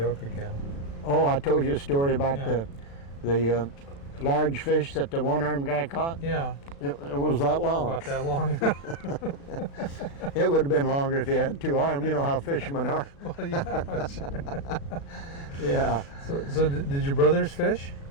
again. Oh, I told you a story about the large fish that the one-armed guy caught? Yeah. It was that long. About that long? It would have been longer if he had two arms. You know how fishermen are. Well, yeah. Yeah. So did your brothers fish?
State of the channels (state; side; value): late; right; 36 ms